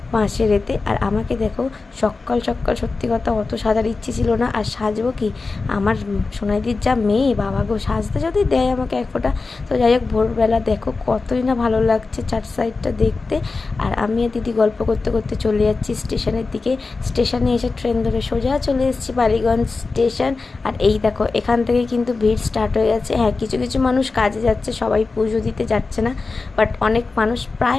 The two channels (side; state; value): right; quieter; 4.0 dB